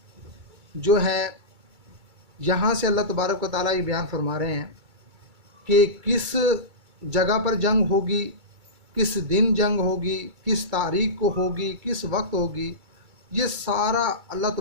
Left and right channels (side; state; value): left; late; 2.3 ms